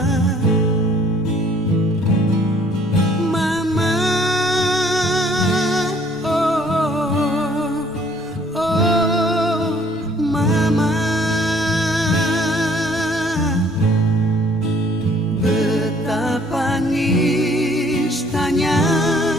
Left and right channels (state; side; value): normal; both; correlation 0.59